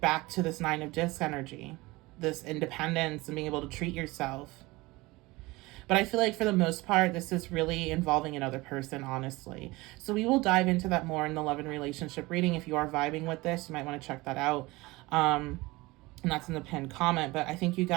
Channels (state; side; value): quieter; left; 21.7 dB